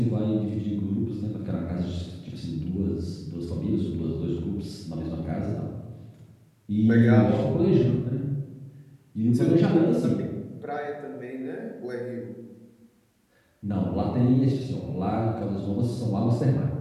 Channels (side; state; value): both; identical; correlation 1.00